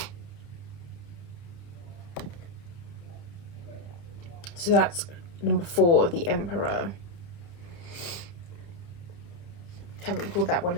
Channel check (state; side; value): late; right; 30 ms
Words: So that's number 4, the Emperor. Haven't pulled that one